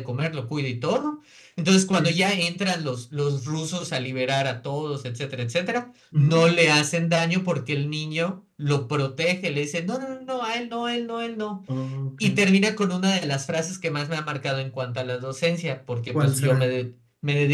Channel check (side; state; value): both; identical; correlation 1.00